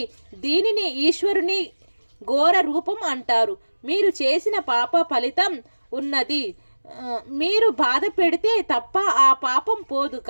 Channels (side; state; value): both; inverted; correlation -1.00